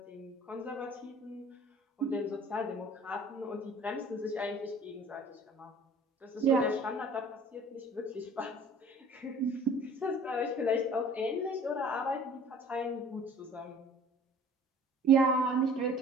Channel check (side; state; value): both; normal; correlation 0.48